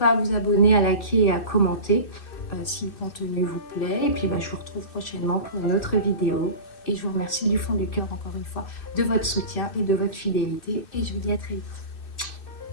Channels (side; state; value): right; late; 2.6 ms